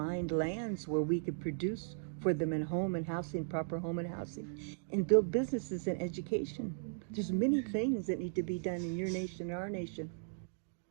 lands where we could produce for them in home and housing, proper home and housing, and build businesses and education. There's many things that need to be done in your nation, our nation.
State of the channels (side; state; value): left; silent; digital silence